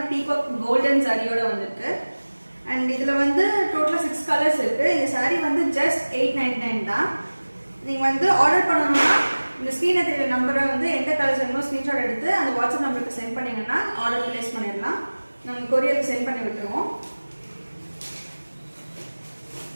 பீகாக் கோல்டன் சாரியோட வந்திருக்கு. and இதுல வந்து டோட்டலா 6 கலர்ஸ் இருக்கு. இந்த சாரி வந்து just 899 தான். நீங்க வந்து ஆர்டர் பண்ணனும்னா இந்த ஸ்கிரீன்ல தெரியற நம்பரை வந்து எந்த கலர்ஸ் வேணுமோ ஸ்கிரீன்ஷாட் எடுத்து அந்த வாட்ஸ்அப் நம்பருக்கு சென்ட் பண்ணீங்கன்னா ஆர்டர் பிளேஸ் பண்ணிடலாம். நாங்கள் கொரியருக்கு சென்ட் பண்ணி விட்டுருவோம்.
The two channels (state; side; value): inverted; both; correlation -1.00